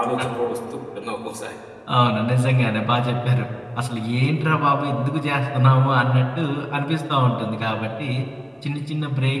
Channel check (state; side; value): identical; both; correlation 1.00